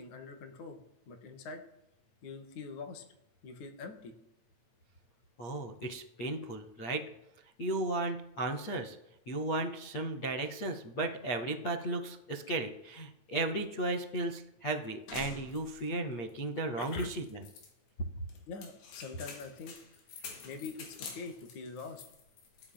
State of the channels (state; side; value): late; right; 8.5 ms